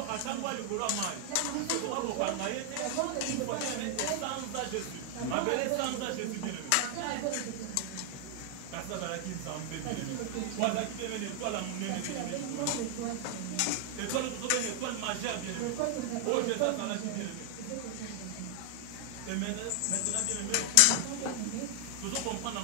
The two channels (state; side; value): different; both; correlation 0.00